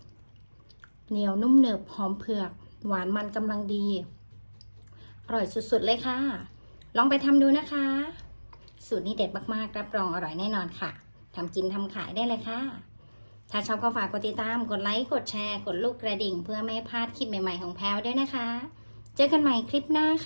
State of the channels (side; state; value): both; inverted; correlation -1.00